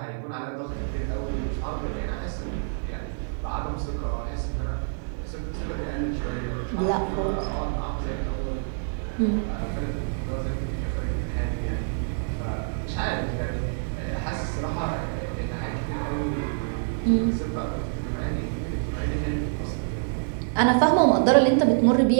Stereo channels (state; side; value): silent; left; 60 dB below the other